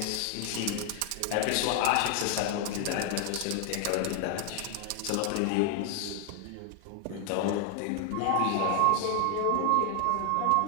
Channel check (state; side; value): different; both; correlation 0.00